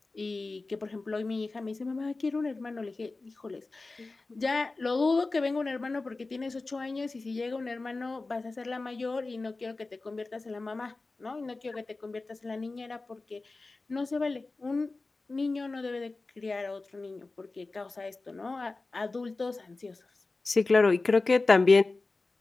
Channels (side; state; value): right; quieter; 3.5 dB